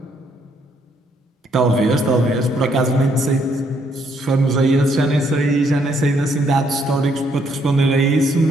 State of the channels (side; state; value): both; normal; correlation 0.71